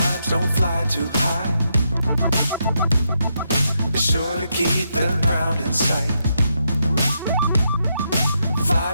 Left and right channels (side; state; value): both; inverted; correlation -0.81